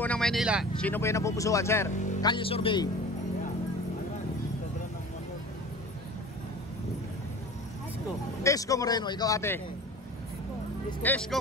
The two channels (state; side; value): normal; both; correlation 0.38